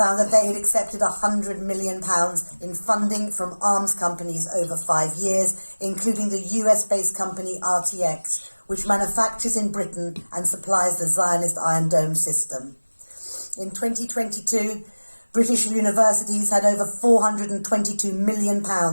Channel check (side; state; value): both; inverted; correlation -1.00